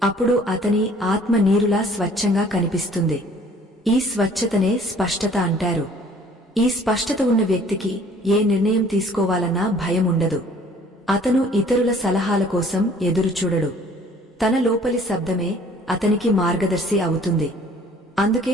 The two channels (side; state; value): both; normal; correlation 0.55